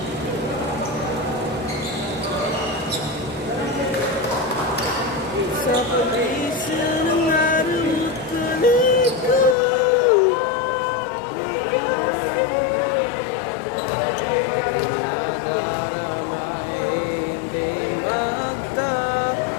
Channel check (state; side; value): drops out; right; at 9.6 s